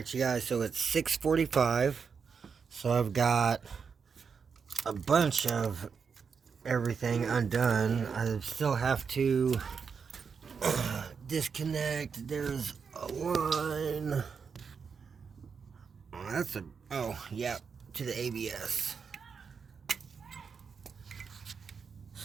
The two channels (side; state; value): left; quieter; 5.9 dB